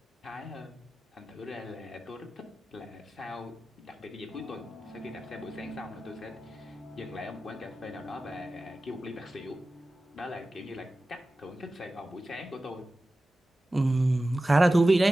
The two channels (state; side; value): normal; both; correlation 0.95